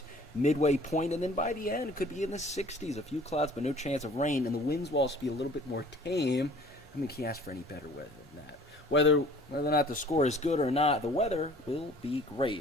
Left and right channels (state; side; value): normal; both; correlation 0.51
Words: midway point. And then by the end, it could be in the 60s. A few clouds, but no chance of rain. And the winds will also be a little bit more tame. I mean, can't ask for any better weather than that. Whether or not the score is good or not, the weather will be